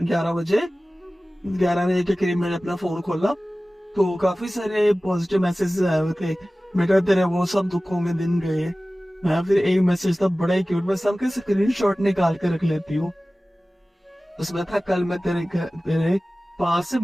बजे, 11 बजे के करीब मैंने अपना फोन खोला, तो काफी सारे पॉजिटिव मैसेज आए हुए थे, बेटा तेरे वो सब दुखों में दिन गए। मैं फिर एक मैसेज था बड़ा ही क्यूट, मैं सबके स्क्रीनशॉट निकाल के रख लेती हूँ। उसमें था, कल मैं तेरे पास से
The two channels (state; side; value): normal; both; correlation 0.97